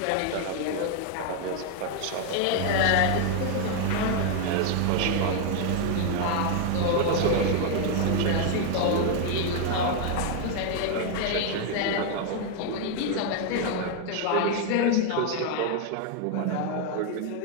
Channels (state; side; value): different; both; correlation 0.00